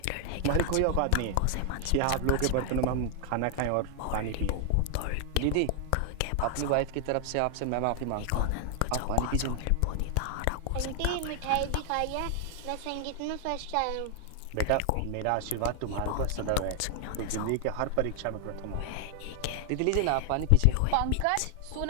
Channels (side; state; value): both; different; correlation 0.00